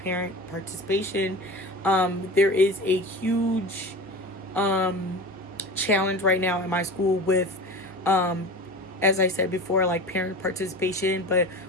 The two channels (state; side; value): normal; both; correlation 0.32